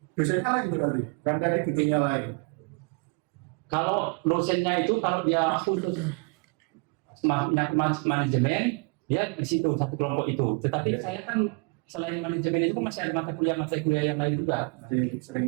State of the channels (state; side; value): quieter; left; 33.4 dB